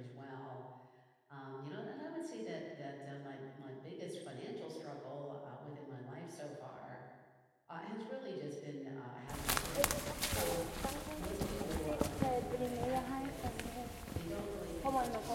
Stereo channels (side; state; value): both; identical; correlation 1.00